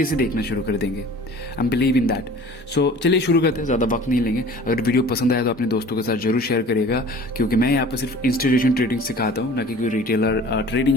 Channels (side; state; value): both; normal; correlation 0.45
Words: से देखना शुरू कर देंगे। I am believe in that. So चलिए शुरू करते हैं, ज़्यादा वक्त नहीं लेंगे। अगर वीडियो पसंद आया तो अपने दोस्तों के साथ जरूर शेयर करिएगा, क्योंकि मैं यहाँ पर सिर्फ इंस्टीट्यूशन ट्रेडिंग सिखाता हूँ, ना कि कोई रिटेलर